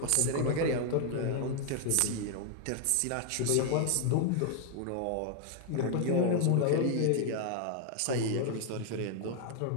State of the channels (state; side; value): different; both; correlation 0.00